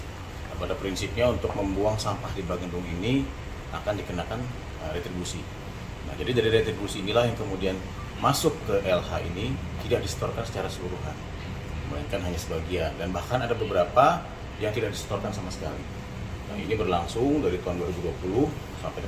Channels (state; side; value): identical; both; correlation 1.00